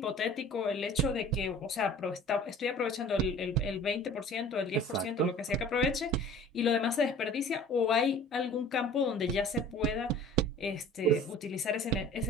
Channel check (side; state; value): both; normal; correlation 0.45